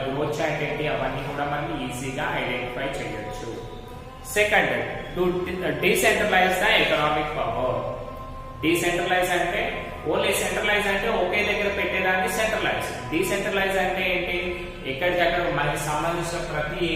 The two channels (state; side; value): identical; both; correlation 1.00